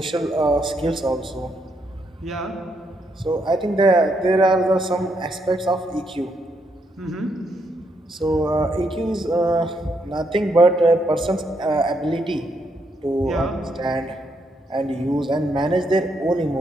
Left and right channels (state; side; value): normal; both; correlation 0.77